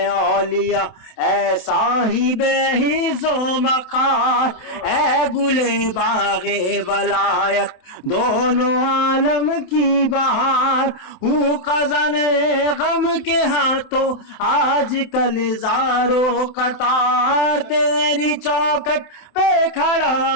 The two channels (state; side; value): late; right; 27 ms